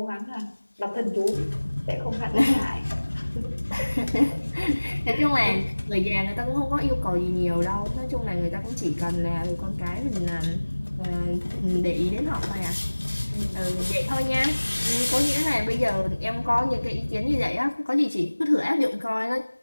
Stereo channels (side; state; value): both; inverted; correlation -1.00